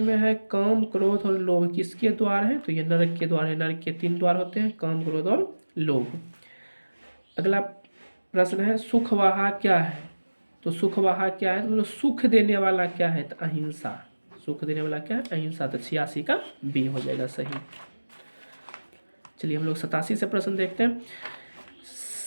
है काम, क्रोध और लोभ किसके द्वार है? तो ये नरक के द्वार है। नरक के 3 द्वार होते हैं, काम, क्रोध और लोभ। अगला प्रश्न है सुखवाहा क्या है? तो सुखवाहा क्या है? तो मतलब सुख देने वाला क्या है? तो अहिंसा। सुख देने वाला क्या है? अहिंसा। तो 86 का बी हो जाएगा सही। चलिए हम लोग 87 से प्रश्न देखते हैं।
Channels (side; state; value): both; inverted; correlation -1.00